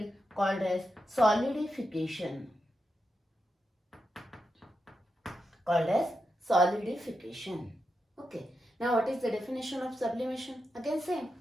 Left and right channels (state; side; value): normal; both; correlation 0.87